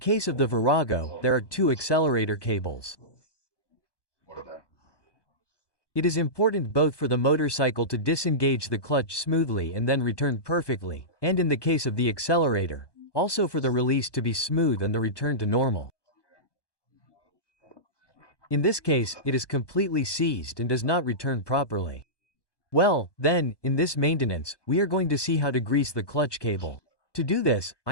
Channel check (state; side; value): late; right; 1.1 ms